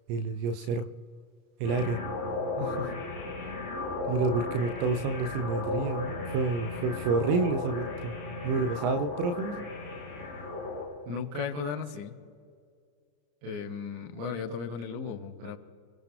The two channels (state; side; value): late; left; 34 ms